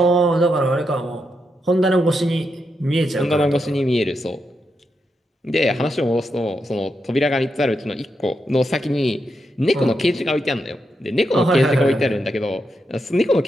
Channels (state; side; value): normal; both; correlation 0.84